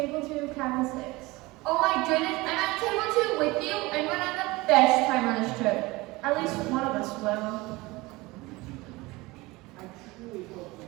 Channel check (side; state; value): left; quieter; 21.8 dB